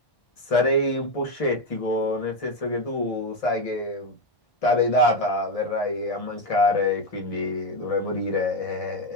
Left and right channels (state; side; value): late; right; 1.7 ms